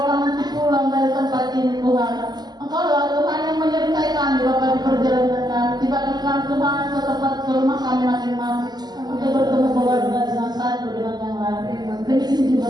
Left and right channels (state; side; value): late; left; 0.20 ms